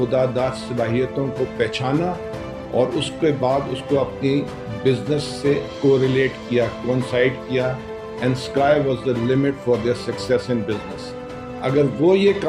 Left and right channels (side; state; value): both; identical; correlation 1.00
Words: داد صلاحیتوں کو پہچانا اور اس کے بعد اس کو اپنی بزنس سے کوریلیٹ کیا، کوئنسائڈ کیا، and sky was the limit for their success in business. اگر وہ یہ